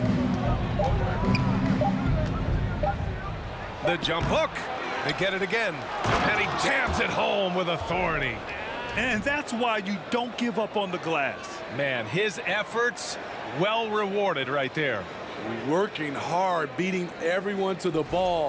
The jump hook. They get it again. And he jams it home with authority. And that's why you don't give up on the glass. Man, his efforts well rewarded right there. Working hard, beating everyone to the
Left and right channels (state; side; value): identical; both; correlation 1.00